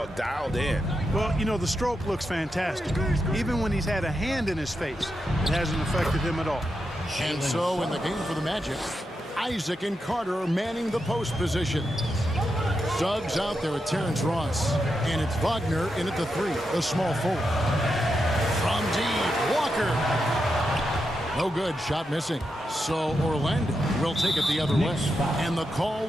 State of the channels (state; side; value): normal; both; correlation 0.86